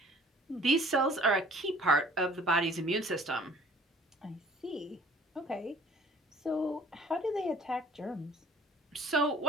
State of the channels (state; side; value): normal; both; correlation 0.54